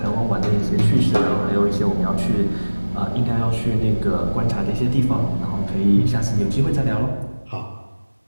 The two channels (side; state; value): both; inverted; correlation -1.00